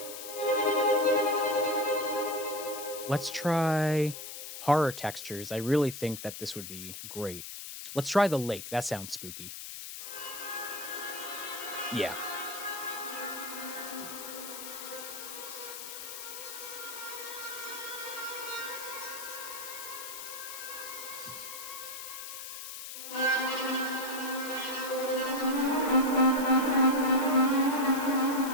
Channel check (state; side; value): noise; left; hiss, 9 dB below the sound